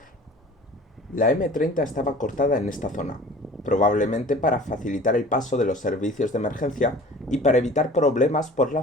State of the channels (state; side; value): normal; both; correlation 0.44